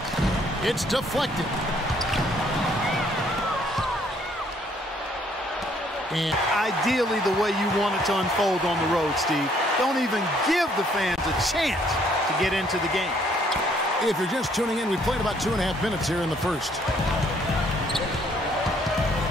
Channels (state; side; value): normal; both; correlation 0.65